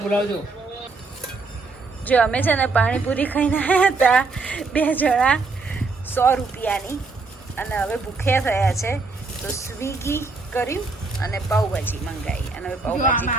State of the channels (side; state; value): left; quieter; 4.0 dB